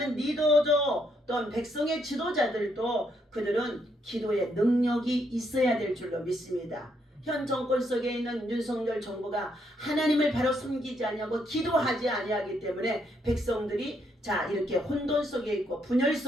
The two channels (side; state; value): both; normal; correlation 0.74